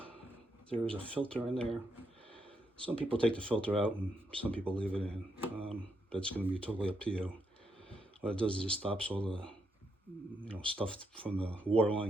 there is a filter in there. Some people take the filter out and some people leave it in. That's going to be totally up to you. What it does is it stops all the stuff from the water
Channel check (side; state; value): both; normal; correlation 0.80